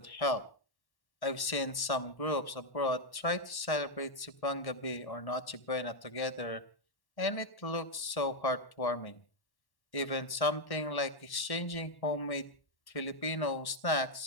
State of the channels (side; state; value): right; late; 1.1 ms